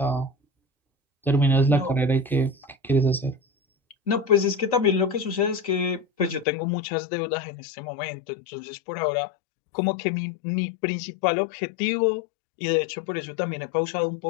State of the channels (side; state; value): right; drops out; at 6.5 s